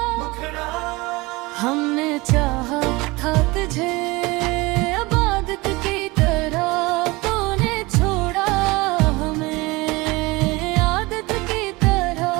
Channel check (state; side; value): quieter; left; 22.9 dB